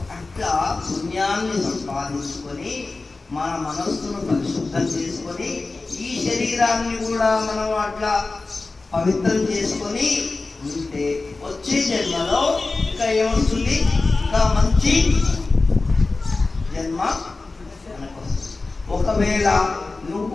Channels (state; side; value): quieter; right; 3.6 dB